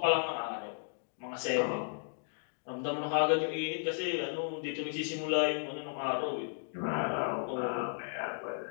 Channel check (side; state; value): right; silent; digital silence